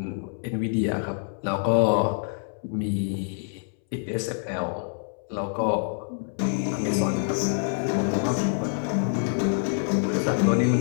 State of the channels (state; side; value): silent; right; 61 dB below the other